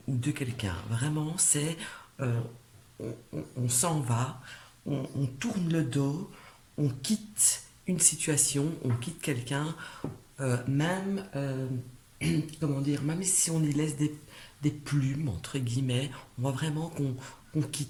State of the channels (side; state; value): both; identical; correlation 1.00